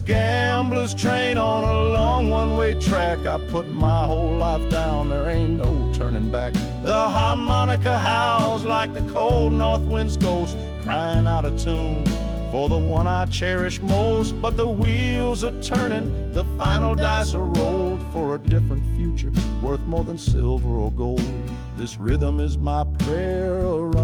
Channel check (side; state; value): both; identical; correlation 1.00